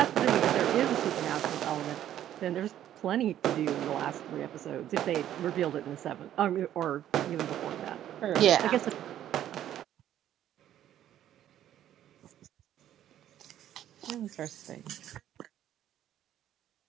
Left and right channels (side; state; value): left; quieter; 11.5 dB